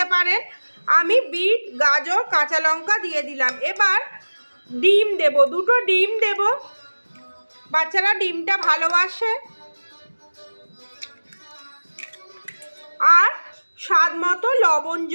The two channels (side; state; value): both; inverted; correlation -1.00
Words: পারেন। আমি বিট, গাজর, কাঁচা লঙ্কা দিয়ে দিলাম। এবার ডিম দেব, দুটো ডিম দেব, বাচ্চারা ডিমটা ভালোবাসে। আর স্বাদ মতো লবণ